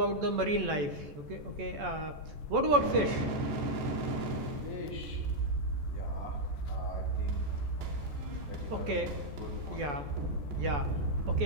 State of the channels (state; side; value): late; left; 14 ms